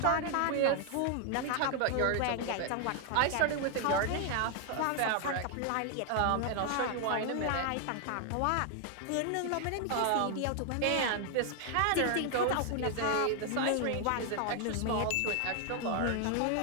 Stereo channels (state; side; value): different; both; correlation 0.00